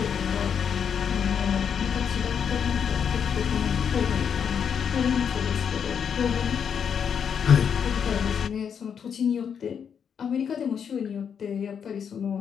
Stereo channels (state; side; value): quieter; right; 7.4 dB